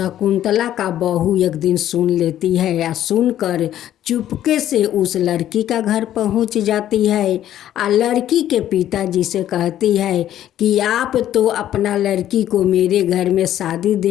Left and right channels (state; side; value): quieter; right; 11.9 dB